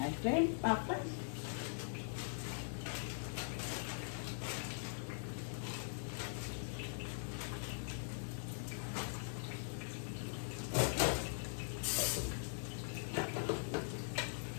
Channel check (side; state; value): right; silent; digital silence